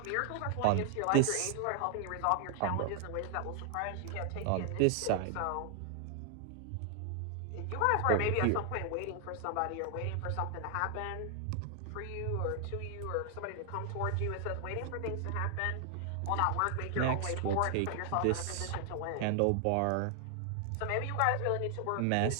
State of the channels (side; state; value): both; different; correlation 0.00